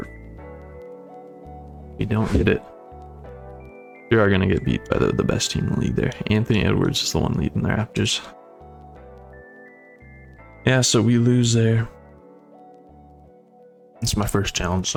We don't get it. We are going to get beat by the best team in the league there. Anthony Edwards is the one leading the Raptors. Yeah, so we lose there. It's my first challenge,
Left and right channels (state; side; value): identical; both; correlation 1.00